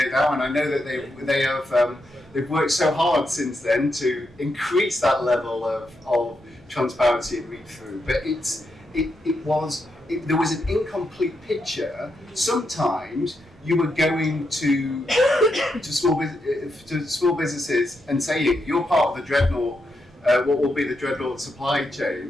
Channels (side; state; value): both; normal; correlation 0.83